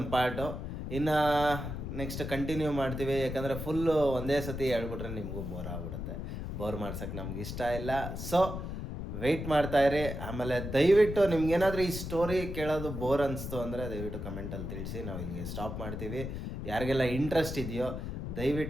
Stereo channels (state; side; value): noise; left; rumble, 6 dB below the sound